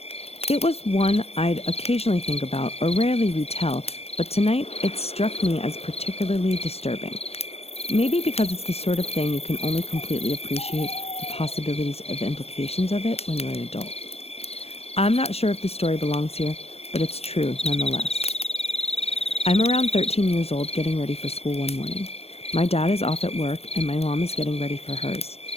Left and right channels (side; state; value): right; late; 0.29 ms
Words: It was one I'd occasionally think about or rarely retell, but tonight it struck me as particularly disturbing. Maybe because it's the sort of thing you can only completely appreciate the possibilities of implications of it when you're an adult. I'm not sure if the story belongs here, but it's true nonetheless. I'm around 13 years old getting ready for school one morning. My dad is off at work and my mom is getting ready for hers.